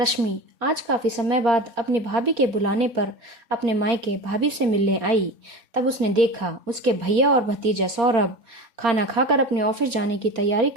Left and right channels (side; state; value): left; late; 4.3 ms